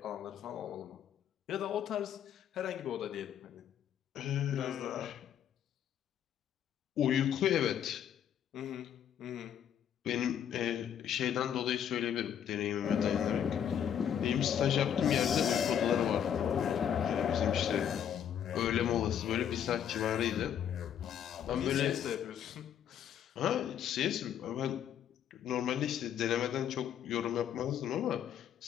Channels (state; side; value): quieter; right; 9.3 dB